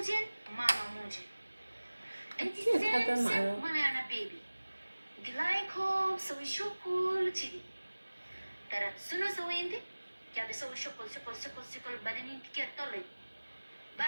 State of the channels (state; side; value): inverted; both; correlation -1.00